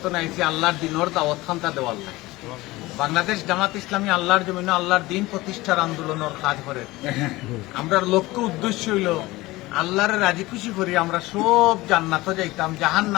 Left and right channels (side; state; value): right; quieter; 19.7 dB